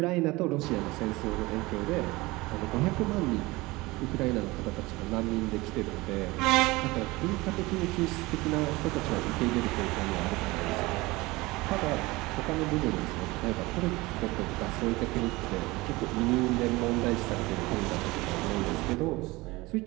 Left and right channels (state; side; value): quieter; left; 21.6 dB